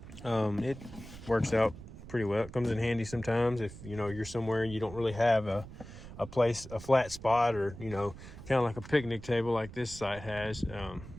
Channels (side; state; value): right; noise; rumble, 14 dB below the sound